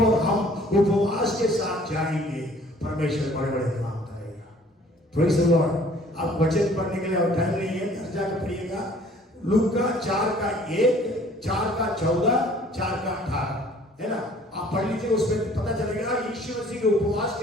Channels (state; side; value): normal; both; correlation 0.55